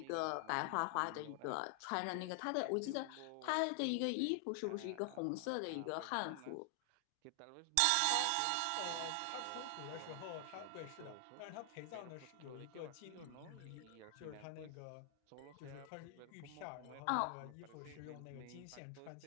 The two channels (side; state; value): both; different; correlation 0.00